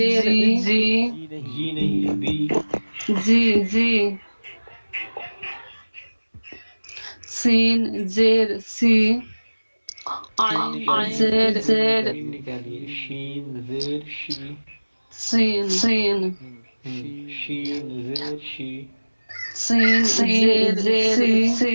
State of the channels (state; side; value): inverted; both; correlation -1.00